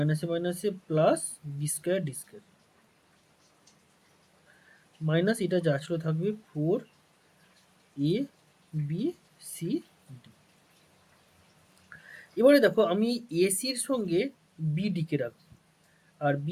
মাইনাসে plus B square D square minus এটা যা ছিল থাকবে 4abcd। এবারে দেখো আমি এসির সঙ্গে বিডিকে রাখবো আর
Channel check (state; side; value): identical; both; correlation 1.00